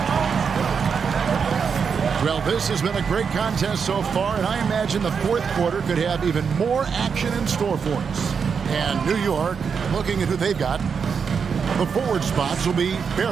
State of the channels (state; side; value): quieter; left; 6.2 dB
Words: Well, this has been a great contest so far, and I imagine the fourth quarter could have even more action in store for us. And New York, looking at who they've got, the forward spots will be